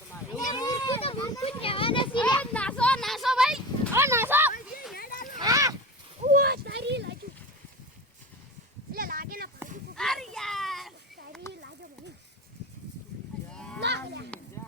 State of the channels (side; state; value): both; normal; correlation 0.29